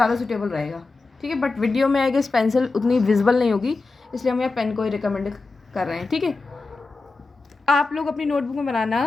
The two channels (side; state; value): right; quieter; 3.7 dB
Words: सूटेबल रहेगा, ठीक है। बट वीडियो में आई गेस पेंसिल उतनी विजिबल नहीं होगी, इसलिए हम यहाँ पेन को ही रिकमेंड कर रहे हैं, ठीक है। आप लोग अपनी नोटबुक में